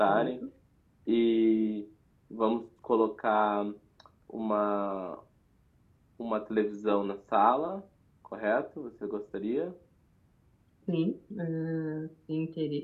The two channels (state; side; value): identical; both; correlation 1.00